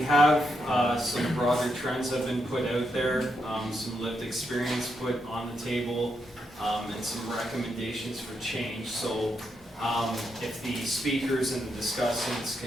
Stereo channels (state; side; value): normal; both; correlation 0.82